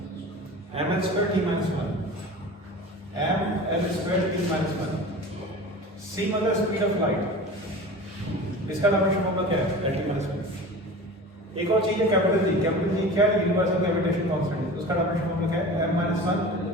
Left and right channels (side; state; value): both; normal; correlation 0.36